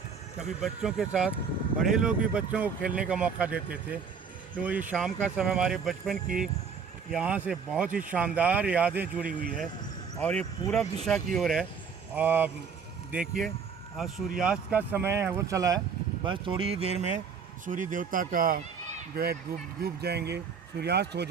कभी बच्चों के साथ बड़े लोग भी बच्चों को खेलने का मौका देते थे। तो ये शाम का समय हमारे बचपन की यहाँ से बहुत ही शानदार यादें जुड़ी हुई है। और ये पूरब दिशा की ओर है। देखिए सूर्यास्त का समय है वो चला है, बस थोड़ी ही देर में सूर्य देवता का जो है डूब जाएंगे, सूर्यास्त हो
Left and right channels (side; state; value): left; quieter; 6.0 dB